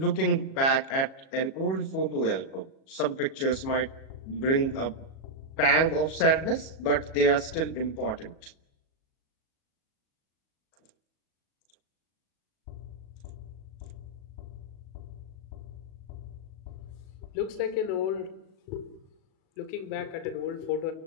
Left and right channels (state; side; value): late; right; 37 ms